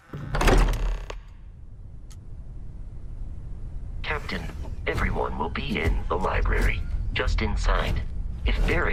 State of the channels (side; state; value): both; identical; correlation 1.00